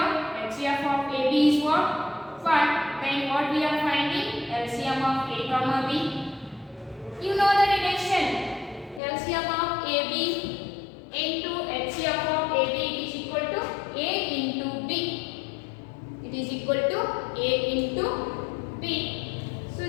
HCF of AB is what? 5. Then what we are finding? LCM of A comma B. You know the relation. LCM of AB into HCF of AB, it is equal to A into B. It is equal to A into B. So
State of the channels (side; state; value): right; drops out; at 9.0 s